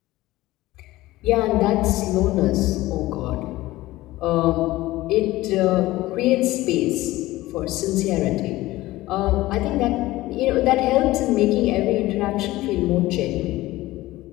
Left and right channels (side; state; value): right; quieter; 17.7 dB